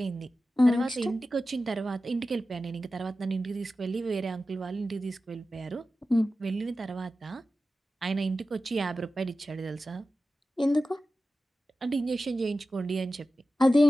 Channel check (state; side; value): normal; both; correlation 0.94